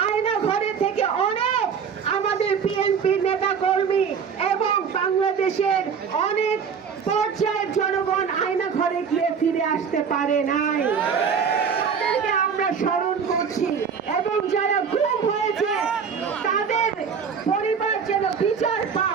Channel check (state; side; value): quieter; left; 6.5 dB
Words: আয়না ঘরে থেকে অনেক আমাদের বিএনপির নেতা কর্মী এবং বাংলাদেশের অনেক পর্যায়ের জনগণ আয়না ঘরে গিয়ে ফিরে আসতে পারে নাই। তাদেরকে আমরা স্মরণ করছি এবং যারা গুম হয়েছে তাদের পরিবার যেন বিচার